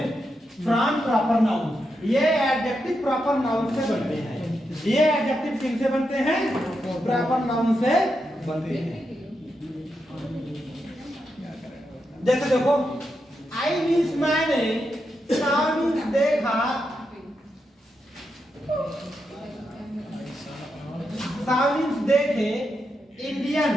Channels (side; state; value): both; normal; correlation 0.85